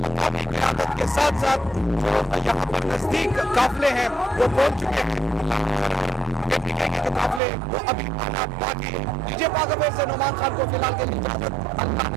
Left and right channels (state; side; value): drops out; left; at 7.4 s